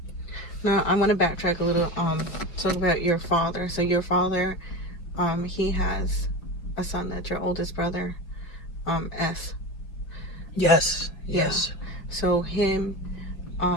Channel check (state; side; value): late; right; 5.5 ms